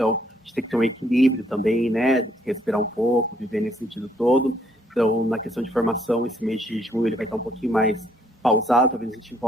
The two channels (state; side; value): normal; both; correlation 0.68